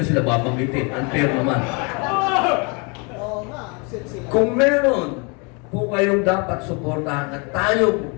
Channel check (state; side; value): quieter; right; 32.1 dB